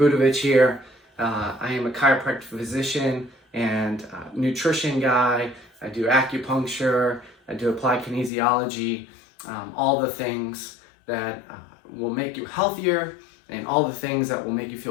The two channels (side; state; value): right; drops out; at 8.3 s